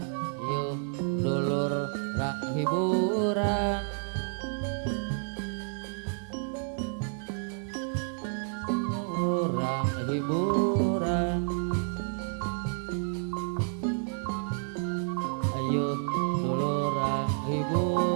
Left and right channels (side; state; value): left; silent; 58 dB below the other